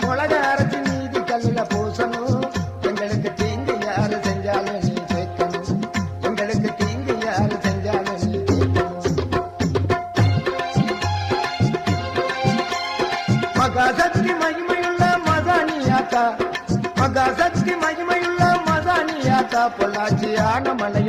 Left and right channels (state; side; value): identical; both; correlation 1.00